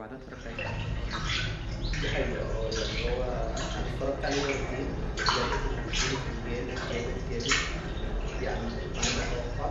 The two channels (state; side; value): identical; both; correlation 1.00